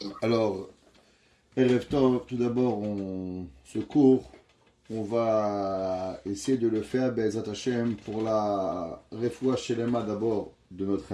Alors, Erev Tov, tout d'abord, ce cours, on va essayer de le faire, Be'ezrat Hashem, pour la refoua shelema d'abord de notre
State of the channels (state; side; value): identical; both; correlation 1.00